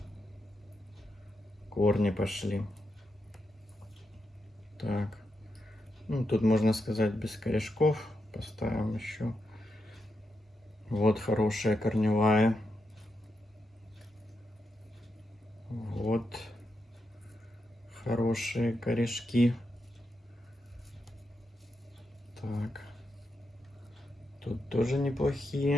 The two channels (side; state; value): both; normal; correlation 0.85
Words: корни пошли. Так, ну, тут можно сказать без корешков. Поставим еще. Вот хорошая корневая. Вот хорошие корешки. Так, тут тоже